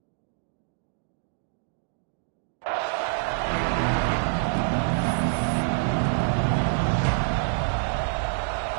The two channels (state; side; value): silent; left; digital silence